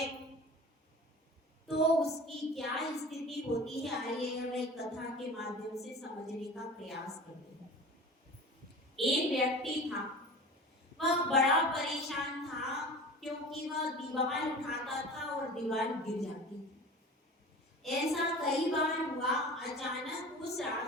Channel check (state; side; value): normal; both; correlation 0.37